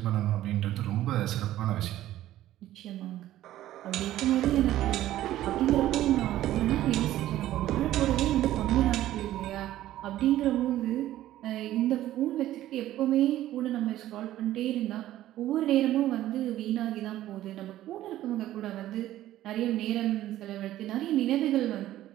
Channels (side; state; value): left; quieter; 13.9 dB